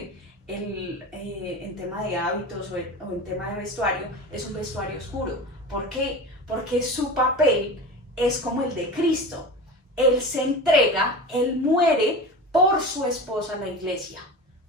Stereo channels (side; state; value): both; normal; correlation 0.31